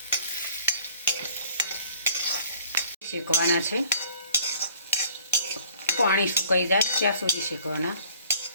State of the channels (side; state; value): both; inverted; correlation -0.53